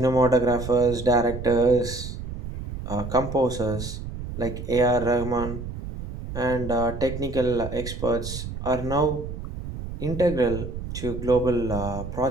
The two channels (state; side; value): noise; right; rumble, 8 dB below the sound